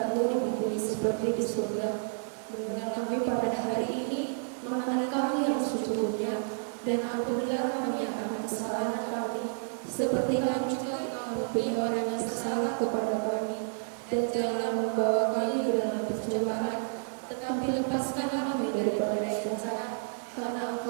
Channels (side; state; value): left; silent; digital silence